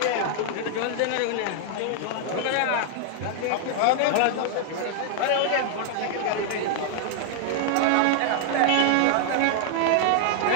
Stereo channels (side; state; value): both; different; correlation 0.00